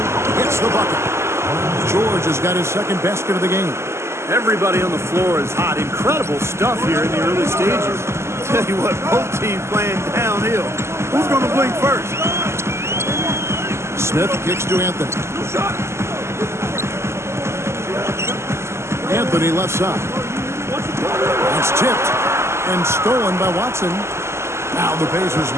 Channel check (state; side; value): late; left; 0.13 ms